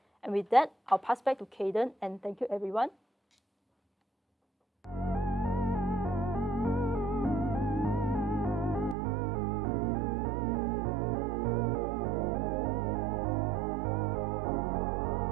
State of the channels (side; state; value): left; drops out; at 9.0 s